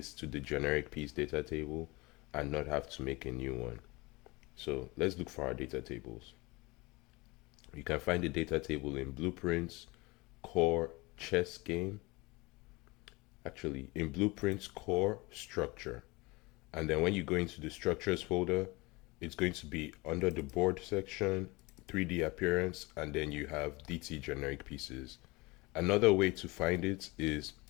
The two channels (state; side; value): quieter; right; 23.9 dB